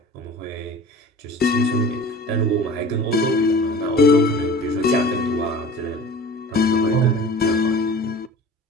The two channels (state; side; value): normal; both; correlation 0.41